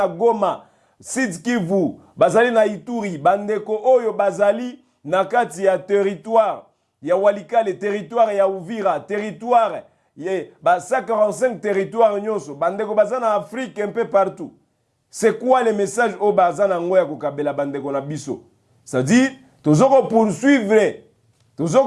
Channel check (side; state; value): both; identical; correlation 1.00